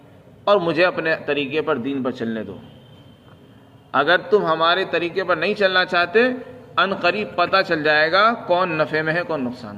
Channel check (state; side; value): identical; both; correlation 1.00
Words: اور مجھے اپنے طریقے پر دین پر چلنے دو۔ اگر تم ہمارے طریقے پر نہیں چلنا چاہتے، ان قریب پتہ چل جائے گا کون نفع میں ہے کون نقصان